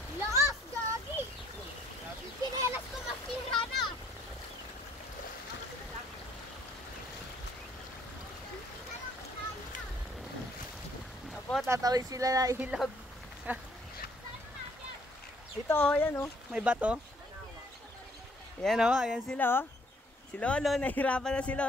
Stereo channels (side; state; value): both; normal; correlation 0.64